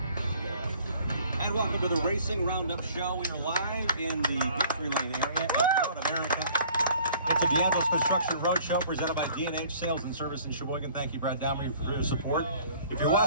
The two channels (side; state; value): both; inverted; correlation -0.54